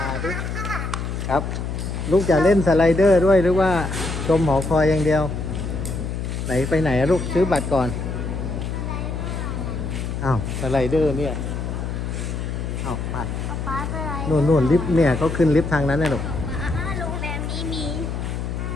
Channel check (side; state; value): left; noise; hum, 4 dB below the sound